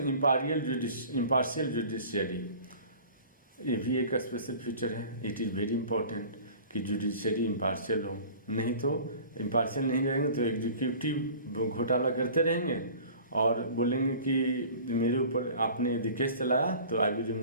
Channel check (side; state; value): both; inverted; correlation -0.44